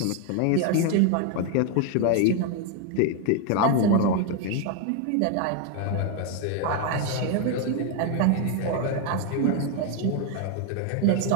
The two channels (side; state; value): both; different; correlation 0.01